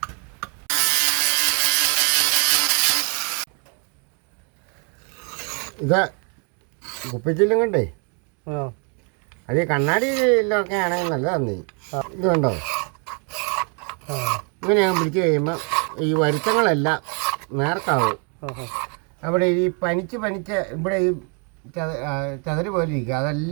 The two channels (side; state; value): left; quieter; 37.8 dB